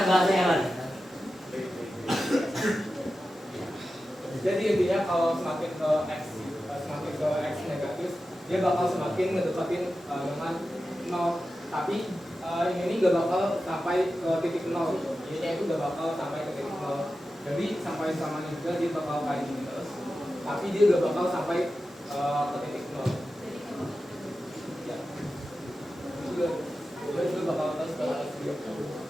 bahasanya, Man? jadi intinya kalau semakin ke X negatif dia bakal semakin ngedekatin dengan 0 tapi ini gak bakal sampai ke titik 0 Y-nya itu gak bakal sampai ke titik 0 jadi sampai samanya juga dia bakal kayak gini terus tapi dia gak bakal sampai ke titik 0 ya dia juga bakal terus dia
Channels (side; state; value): both; normal; correlation 0.92